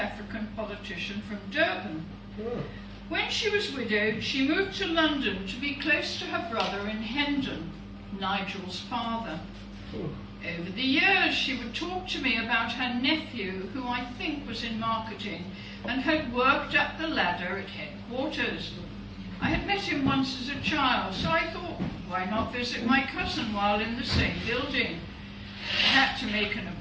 politician from Durban. When she was widowed, she moved to London to be close to her brother in Hendon, Nigel's father. Over the years, she would talk to me about her nephew, who I think was in marketing, and had worked up the ladder at headquarters. I had met him once as a child, so I thought, why not visit my cousin while in the same building? had to make an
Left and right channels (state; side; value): identical; both; correlation 1.00